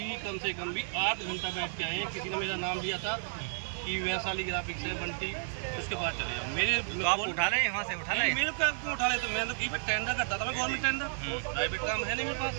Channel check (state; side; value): silent; left; 56 dB below the other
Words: कम से कम भी 8 घंटा बैठ के आए हैं। किसी ने मेरा नाम लिया था कि वैशाली ग्राफिक्स है बंटी, उसके पास चले जाओ। मेरे तो आप उठा ले, वहाँ से उठा ले। मेरे क्या क्यों उठा ले? तो मैं तो टेंडर करता था, मैं गवर्नमेंट टेंडर, प्राइवेट काम है नहीं मेरे पास।